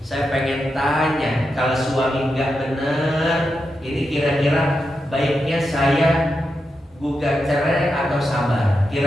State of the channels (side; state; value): both; normal; correlation 0.87